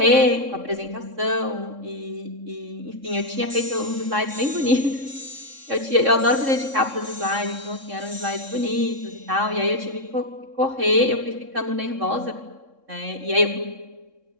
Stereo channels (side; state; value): left; late; 3.6 ms